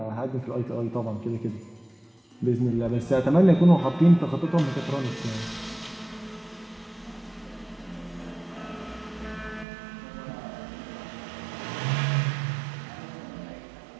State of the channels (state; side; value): drops out; left; at 9.7 s